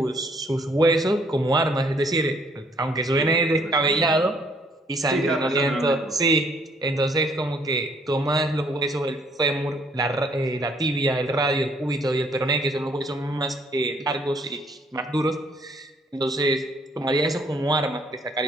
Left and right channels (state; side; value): normal; both; correlation 0.65